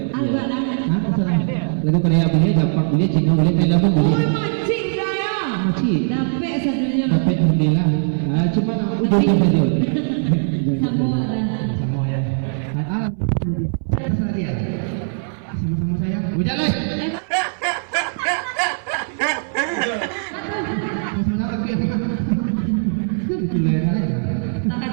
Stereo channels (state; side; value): silent; left; 63 dB below the other